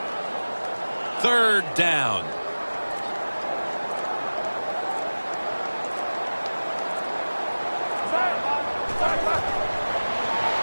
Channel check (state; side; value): inverted; both; correlation -1.00